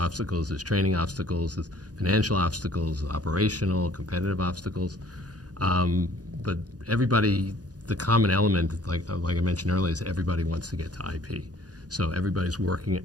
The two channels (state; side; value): late; left; 0.68 ms